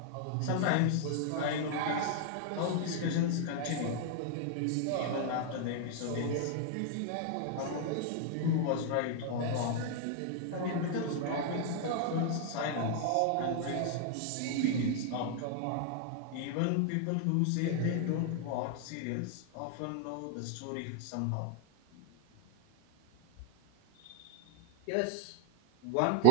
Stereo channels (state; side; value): different; both; correlation 0.01